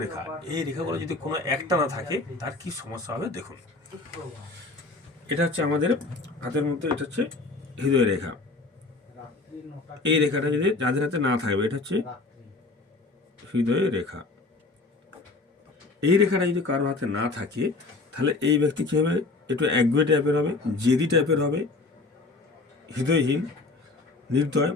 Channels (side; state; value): right; quieter; 3.5 dB